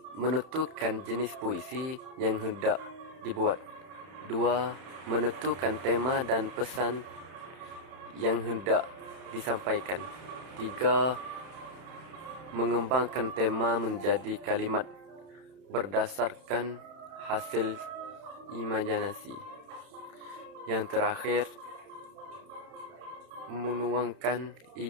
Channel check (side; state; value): left; late; 31 ms